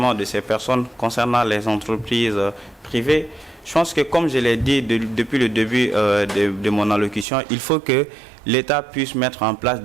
de ces personnes concernant les entreprises privées, je pense que comme je l'ai dit depuis le début de mon allocution, il faut que l'État puisse mettre en place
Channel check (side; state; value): left; drops out; at 7.2 s